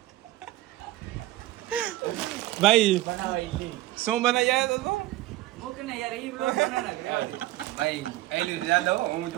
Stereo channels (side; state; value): left; quieter; 16.5 dB